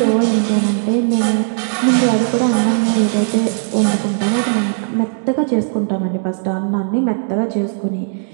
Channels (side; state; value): left; silent; 67 dB below the other